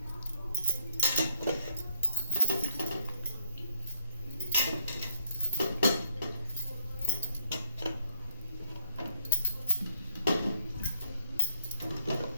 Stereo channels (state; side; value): inverted; both; correlation -0.68